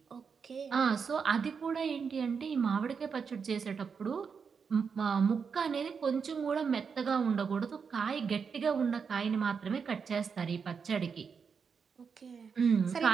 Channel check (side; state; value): left; quieter; 6.0 dB